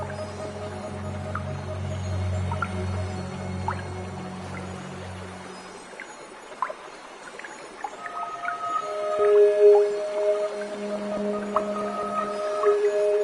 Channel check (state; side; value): identical; both; correlation 1.00